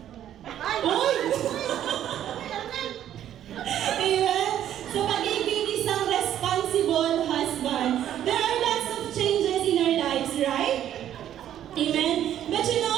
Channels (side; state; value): left; quieter; 11.1 dB